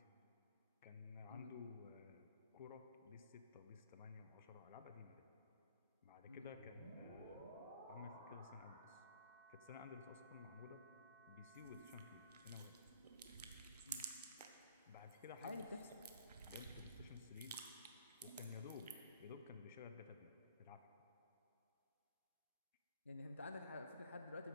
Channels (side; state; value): both; inverted; correlation -0.57